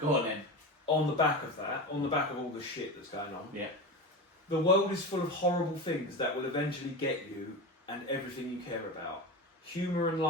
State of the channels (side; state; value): both; normal; correlation 0.23